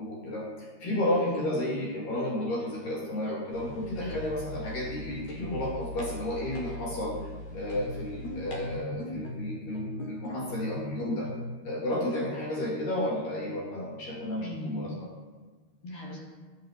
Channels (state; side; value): late; right; 13 ms